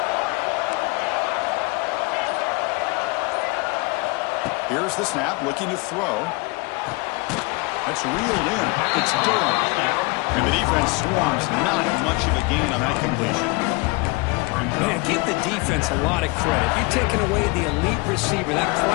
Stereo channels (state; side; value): quieter; right; 25.9 dB